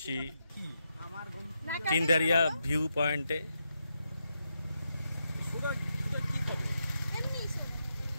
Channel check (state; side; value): inverted; both; correlation -0.84